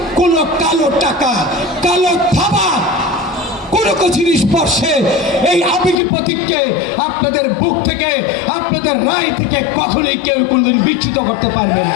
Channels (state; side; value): drops out; right; at 6.0 s